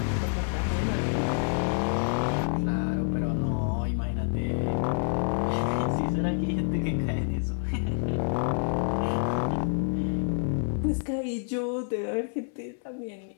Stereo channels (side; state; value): right; silent; 59 dB below the other